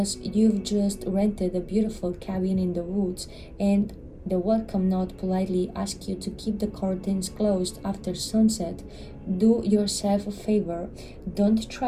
you've just rented a beautiful cabin in the woods and the welcome note politely asks you to keep the curtains closed after sunset, do yourself a favor. Don't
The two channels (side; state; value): both; identical; correlation 1.00